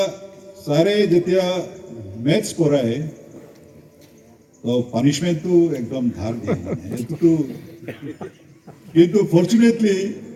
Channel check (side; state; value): both; identical; correlation 1.00